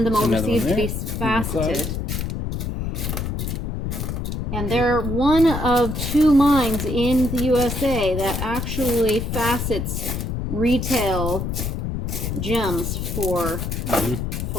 them overseas to be faceted. And they're one of 2 mines in the USA that actually facets retail gems for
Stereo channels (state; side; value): noise; left; rumble, 3 dB below the sound